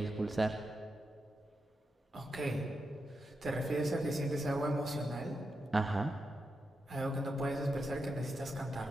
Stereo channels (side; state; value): both; normal; correlation 0.86